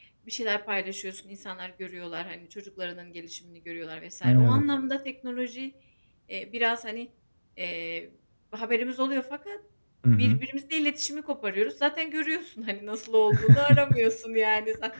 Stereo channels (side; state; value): both; inverted; correlation -1.00